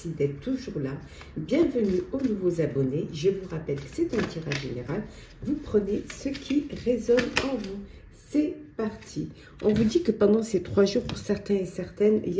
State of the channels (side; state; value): both; identical; correlation 1.00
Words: d'être toujours là. Bienvenue aux nouveaux abonnés. Je vous rappelle que c'est un tirage général. Vous prenez ce qui résonne en vous. C'est parti. On vous dit que pendant ces 3 jours, pour certains et certaines, il